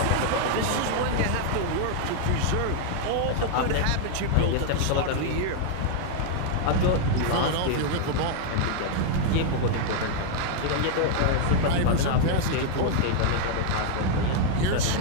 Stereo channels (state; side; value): different; both; correlation 0.00